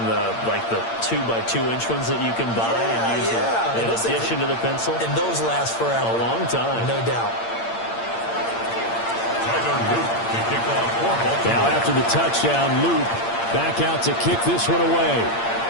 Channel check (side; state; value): right; late; 8.7 ms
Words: the 2x2-inch ones that you can buy and use in addition to the pencil. And those last forever. A long time. No doubt. Now after the touchdown, Luke back out to kick this one away.